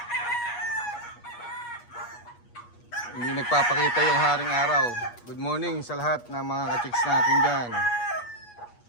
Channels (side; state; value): right; late; 8.4 ms